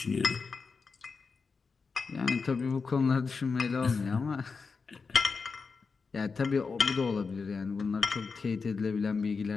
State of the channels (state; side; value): quieter; right; 4.9 dB